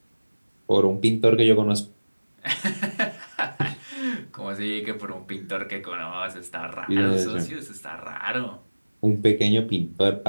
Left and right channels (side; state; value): both; inverted; correlation -1.00